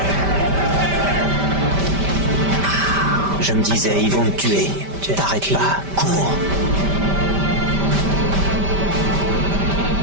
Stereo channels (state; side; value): late; left; 5.1 ms